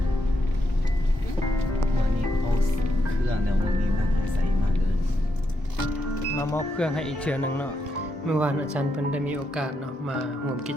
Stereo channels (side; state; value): both; normal; correlation 0.82